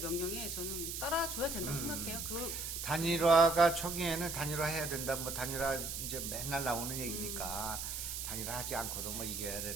명령에 저는 따라줘야 된다고 생각해요. 단일화가 초기에는 단일화해야 된다. 뭐 단일화 이제 맨날 나오는 얘기니까 단일화하지 않고도 뭐 이겨야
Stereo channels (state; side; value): noise; right; hiss, 4 dB below the sound